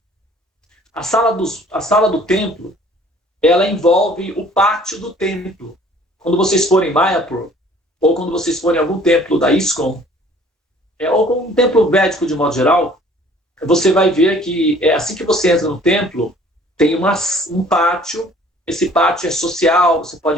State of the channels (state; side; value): normal; both; correlation 0.54